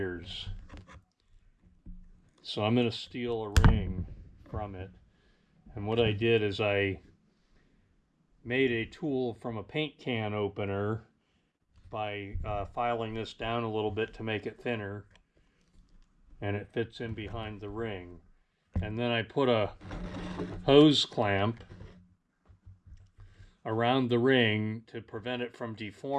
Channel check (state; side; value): identical; both; correlation 1.00